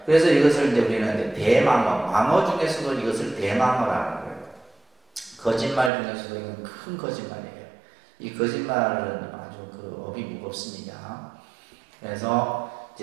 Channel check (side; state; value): left; drops out; at 5.9 s